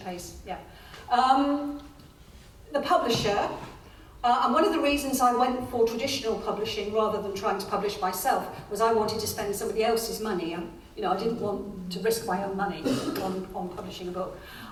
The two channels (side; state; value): both; identical; correlation 1.00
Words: Yeah. The publisher, and one of the reasons I went for traditional publishing rather than trying to publish myself was I wanted to spend somebody else's money. I didn't want to risk my own money on publishing a book.